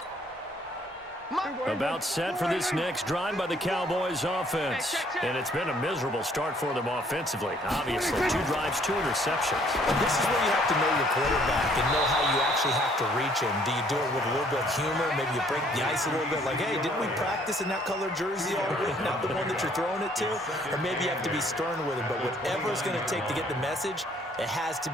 About set for this next drive by the Cowboys offense. And it's been a miserable start for them offensively. Obviously, 2 drives, 2 interceptions. This is where you have to know your quarterback and know how you actually have to reach him. Do you do it with a little bit of humor? Maybe you break the ice a little bit like, hey, didn't we practice in that color jersey all week, not the one that you're throwing it to? Or maybe you have to be stern with him. But whatever it's going to take to get the message, it has to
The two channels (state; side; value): normal; both; correlation 0.62